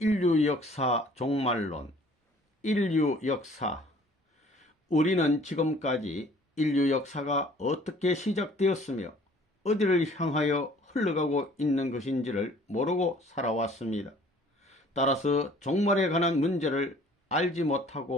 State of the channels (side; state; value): both; normal; correlation 0.54